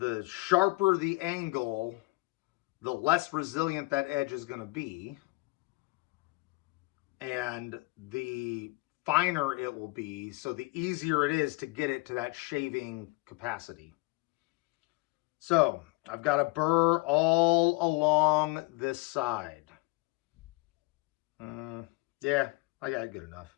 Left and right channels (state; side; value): quieter; right; 24.0 dB